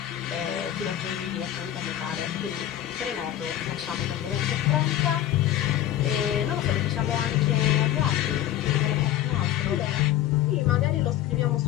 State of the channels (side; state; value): right; quieter; 12.2 dB